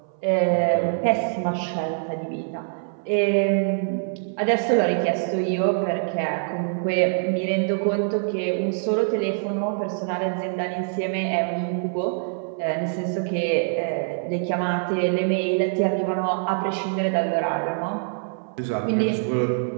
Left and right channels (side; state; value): left; silent; 58 dB below the other